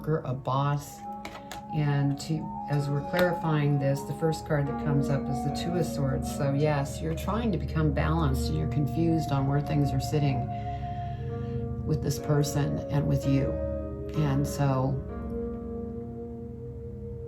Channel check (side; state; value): both; identical; correlation 1.00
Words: a boss. And as we're clarifying this, the first card that comes up is the Two of Swords. So yes, you're trying to become balanced and you're confused on where things are sitting with this person and with you. And so